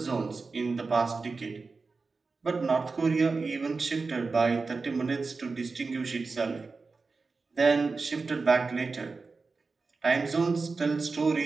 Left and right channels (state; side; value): quieter; left; 4.2 dB